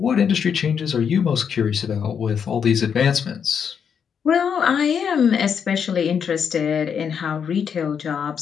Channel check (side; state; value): right; quieter; 7.2 dB